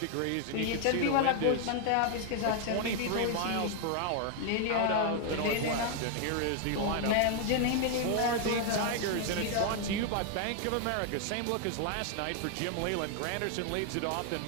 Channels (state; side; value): different; both; correlation 0.00